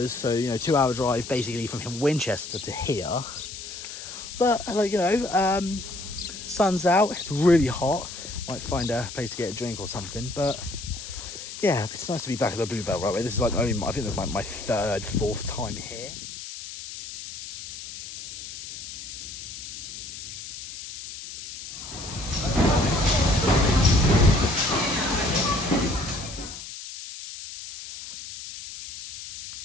so 2-hour drive basically from Winchester to here. But sun's out, it's really hot. Might find a place to get a drink or something, but yeah, it's nice to be back at the Bluebell Railway. This is I think this is my third, fourth time here.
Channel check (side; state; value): left; noise; hiss, 11 dB below the sound